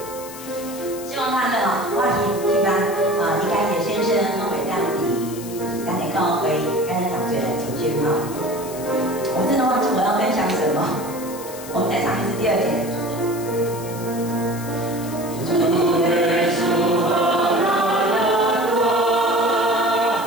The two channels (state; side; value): noise; left; hiss, 14 dB below the sound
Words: 希望他们哦，我希望应该也先生我会让你咱的教会跟咱同学来组织哈。我真的忘记我要分享什么，我们再唱一次第2节。